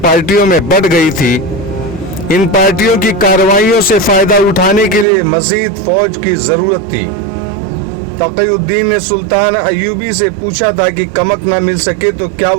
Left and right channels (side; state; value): left; drops out; at 5.1 s